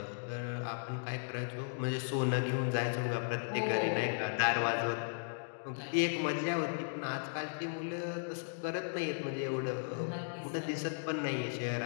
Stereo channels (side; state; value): right; silent; digital silence